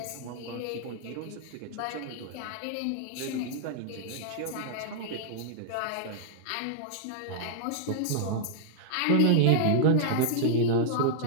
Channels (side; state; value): both; different; correlation -0.01